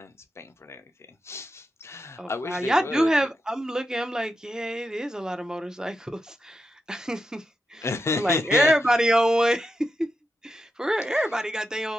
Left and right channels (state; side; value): normal; both; correlation 0.87